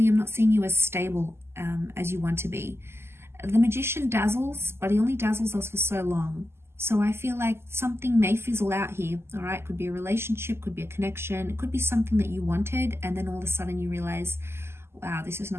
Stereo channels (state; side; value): late; left; 0.12 ms